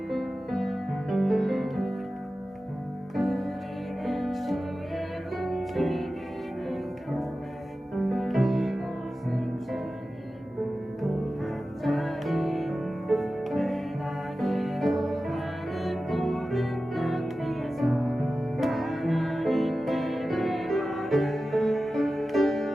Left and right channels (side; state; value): both; normal; correlation 0.94